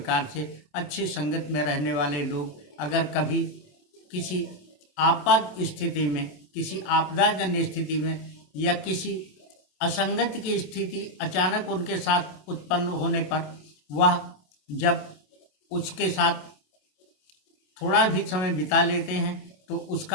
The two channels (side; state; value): right; late; 27 ms